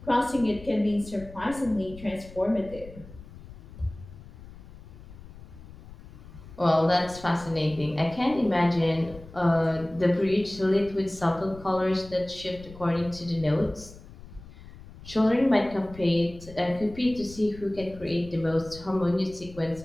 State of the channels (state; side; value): noise; left; rumble, 17 dB below the sound